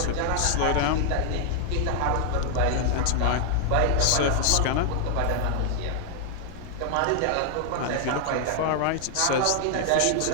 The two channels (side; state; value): both; different; correlation 0.00